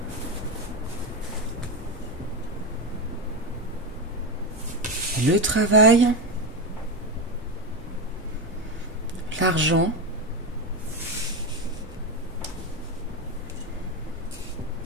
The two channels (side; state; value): both; normal; correlation 0.13